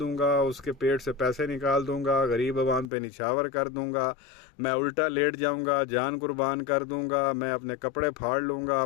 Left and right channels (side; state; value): right; drops out; at 2.9 s